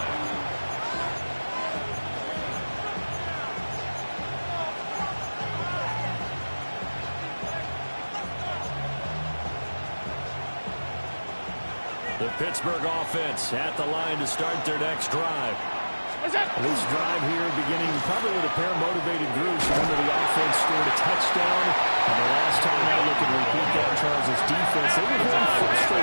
The Pittsburgh offense at the line to start their next drive. This drive here beginning probably with a pair of motivated groups. Remember, the offense scored a touchdown. And the last time I look and repeat that, Charles' defense, they were very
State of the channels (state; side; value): inverted; both; correlation -1.00